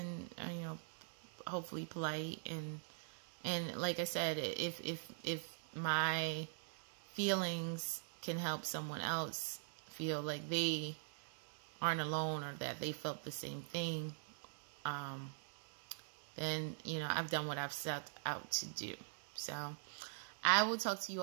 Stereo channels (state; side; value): silent; left; digital silence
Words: you know, hopefully polite, and like I said, if my feelings can help someone else feel like they aren't alone, or that they felt the same thing, then, you know, I've done what I've set out to do. So I will talk to you